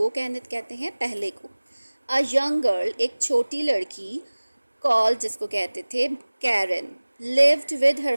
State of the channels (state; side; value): inverted; both; correlation -1.00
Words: कहते हैं पहले को. अ यंग गर्ल एक छोटी लड़की, कॉल जिसको कहते थे Karen, lived with her